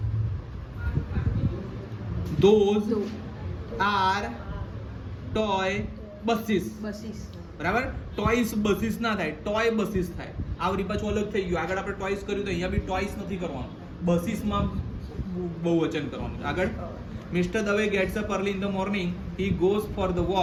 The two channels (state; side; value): identical; both; correlation 1.00